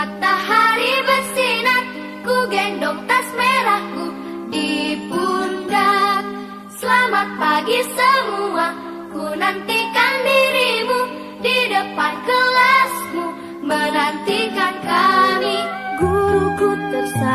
bersinar, ku gendong tas merahku di pundak. Selamat pagi semua, ku nantikan dirimu di depan kelasmu, menantikan kami. Guruku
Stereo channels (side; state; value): both; identical; correlation 1.00